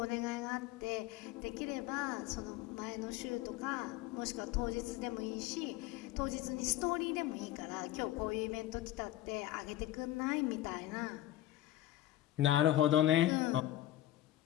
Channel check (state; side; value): quieter; right; 14.2 dB